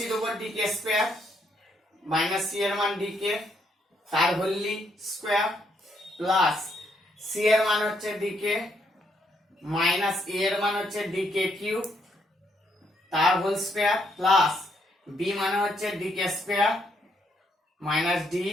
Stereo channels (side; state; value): both; normal; correlation 0.74